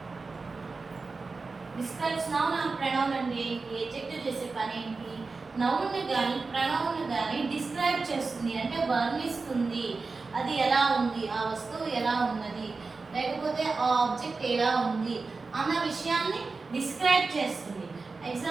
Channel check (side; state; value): left; quieter; 4.1 dB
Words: Describes noun or pronoun అంటే adjective చేసే పని ఏంటి? Noun ని గాని pronoun ని గాని డిస్క్రైబ్ చేస్తుంది అంటే వర్ణిస్తుంది. అది ఎలా ఉంది, ఆ వస్తువు ఎలా ఉన్నది, లేకపోతే ఆ ఆబ్జెక్ట్ ఎలా ఉంది అన్న విషయాన్ని డిస్క్రైబ్ చేస్తుంది.